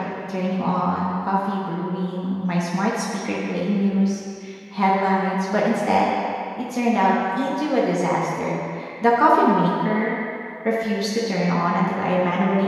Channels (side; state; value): both; identical; correlation 1.00